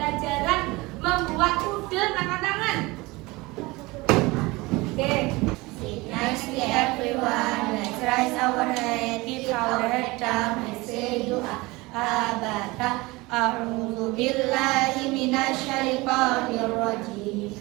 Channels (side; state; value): left; quieter; 22.6 dB